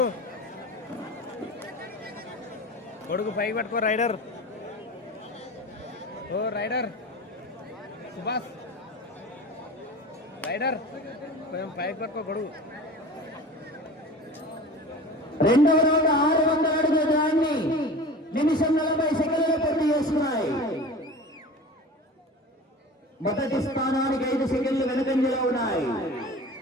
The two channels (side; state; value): both; normal; correlation 0.36